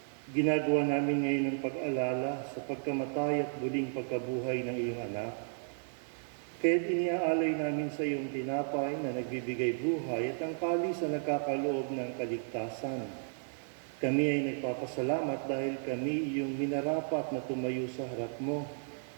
ginagawa namin ngayon ang pag-alala sa pagkamatay at muling pagkabuhay ng iyong anak. Kaya't iniaalay namin sa iyong tinapay na nagbibigay buhay at ang kalis na nagkakaloob ng kaligtasan. Kami ay nagpapasalamat dahil kami iyong minarapat na tumayo sa harap mo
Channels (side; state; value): left; silent; 55 dB below the other